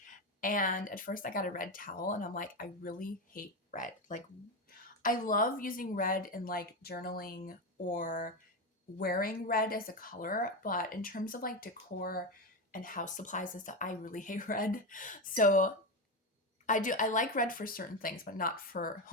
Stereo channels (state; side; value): normal; both; correlation 0.14